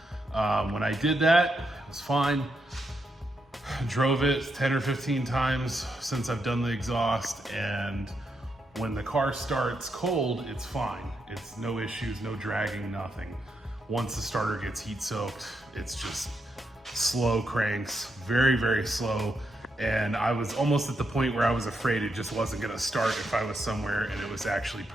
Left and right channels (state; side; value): normal; both; correlation 0.82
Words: When I did that, it was fine. Drove it 10 or 15 times since I've done the exhaust, and when the car starts cold, it's fine. It's no issues, no dragging, nothing. Once the starter gets heat soaked, it's just slow cranks, very, very slow. And I was almost at the point where I was afraid it just wasn't gonna start if I was somewhere and it was actually